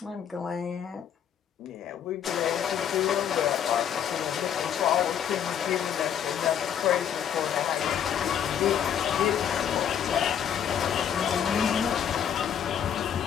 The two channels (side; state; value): right; quieter; 8.9 dB